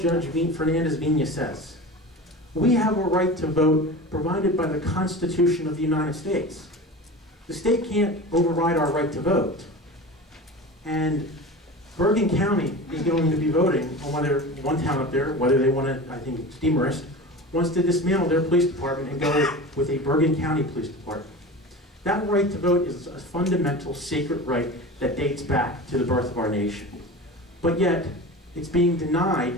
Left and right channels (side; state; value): both; normal; correlation 0.32